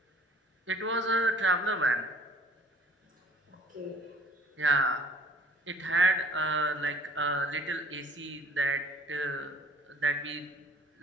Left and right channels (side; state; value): both; normal; correlation 0.52